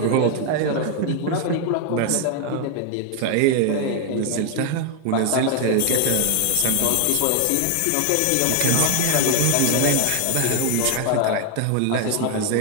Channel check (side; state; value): both; different; correlation 0.01